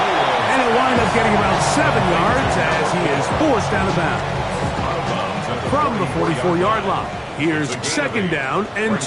and he'll wind up getting about 7 yards as he is forced out of bounds. From the 44-yard line, here's second down and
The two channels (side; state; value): both; identical; correlation 1.00